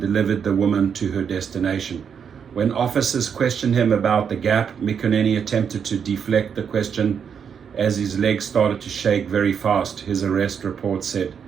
delivered the woman to her destination. When officers questioned him about the gap, Mikuneni attempted to deflect the question as his legs started to shake very fast, his arrest report said.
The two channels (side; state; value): left; quieter; 7.2 dB